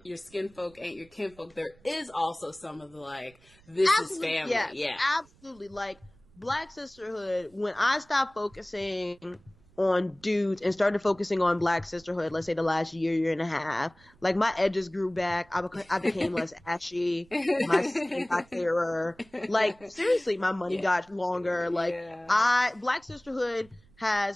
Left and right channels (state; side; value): noise; right; rumble, 29 dB below the sound